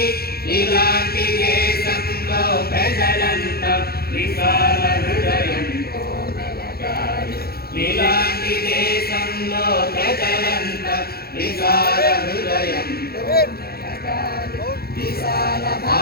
ఇలాంటి దేశంలో ప్రజలంతా విశాల హృదయంతో మెలగాలి ఇలాంటి దేశంలో ప్రజలంతా విశాల హృదయంతో మెలగాలి విశాల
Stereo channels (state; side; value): late; right; 0.45 ms